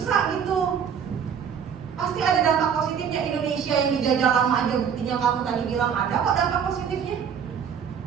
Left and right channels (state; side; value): quieter; left; 7.5 dB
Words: gitu. Pasti ada dampak positifnya. Indonesia yang dijajah lama aja, buktinya kamu tadi bilang ada kok dampak positifnya.